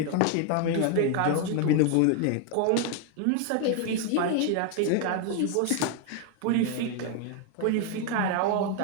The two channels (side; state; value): both; different; correlation 0.00